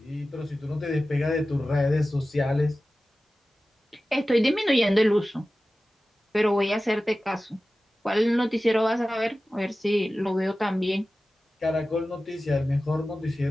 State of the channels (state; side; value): normal; both; correlation 0.95